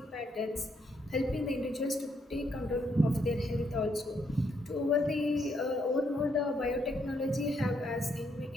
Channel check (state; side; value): normal; both; correlation 0.75